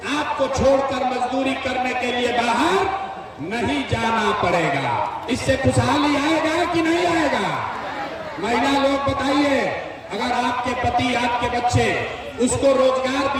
आपको छोड़कर मजदूरी करने के लिए बाहर नहीं जाना पड़ेगा। इससे खुशहाली आएगा कि नहीं आएगा? महिला लोग बताइए, अगर आपके पति, आपके बच्चे, उसको रोजगार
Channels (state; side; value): identical; both; correlation 1.00